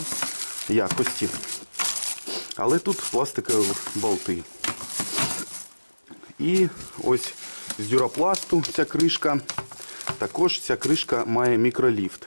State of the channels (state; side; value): inverted; both; correlation -1.00